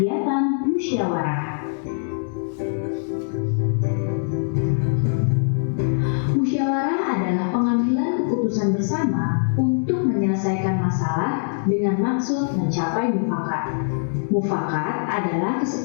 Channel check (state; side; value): silent; right; 64 dB below the other